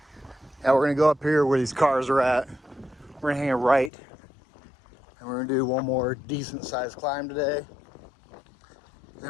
we're gonna go up here where these cars are at. We're gonna hang a right, and we're gonna do one more decent sized climb today.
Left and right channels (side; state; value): right; drops out; at 3.9 s